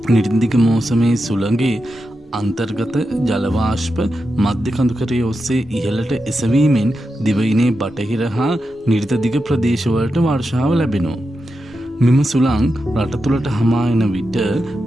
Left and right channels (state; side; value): normal; both; correlation 0.89